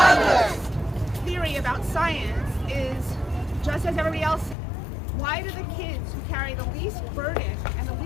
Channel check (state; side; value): drops out; right; at 4.5 s